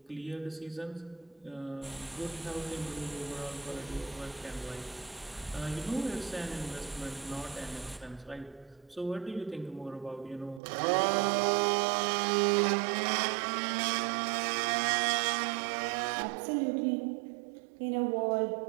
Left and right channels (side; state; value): left; drops out; at 10.6 s